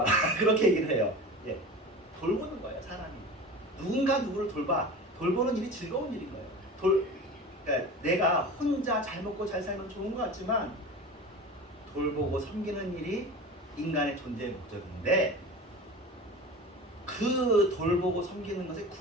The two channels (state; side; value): normal; both; correlation 0.33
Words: 그렇게 얘기를 해요. 예, 돌보는 거예요, 사람이. 누군가 누구를 돌보는 일이 즐거운 일인 거예요. 그러니까 내가 혼자 잘 먹고 잘 살면 좋은 것 같지만 돌보고 섬기는 일이 인간의 존재의 목적인데 그 돌보고 섬기는 것의